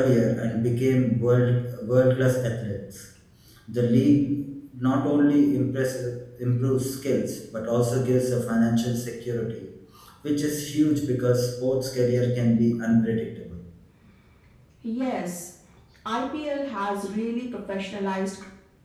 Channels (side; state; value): both; identical; correlation 1.00